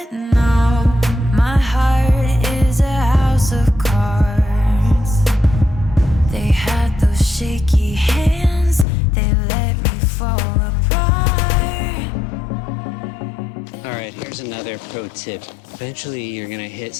no. My heart is a house of cards. They had those shaky hands, they let me fall apart. All right, here's another pro tip. Eventually, you're gonna hit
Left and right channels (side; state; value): right; drops out; at 8.8 s